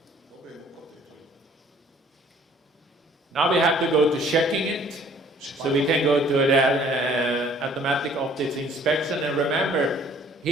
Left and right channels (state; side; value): normal; both; correlation 0.57